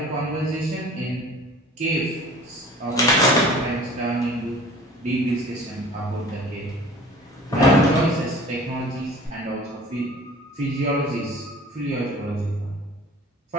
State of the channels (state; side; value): normal; both; correlation 0.45